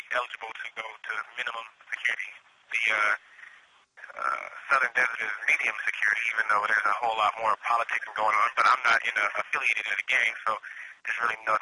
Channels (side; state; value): both; identical; correlation 1.00